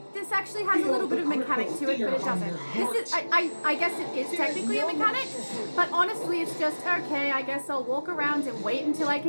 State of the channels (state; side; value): inverted; both; correlation -1.00